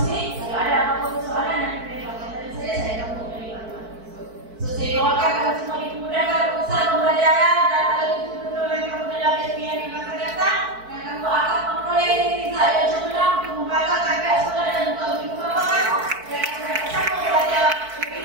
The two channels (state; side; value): late; left; 4.5 ms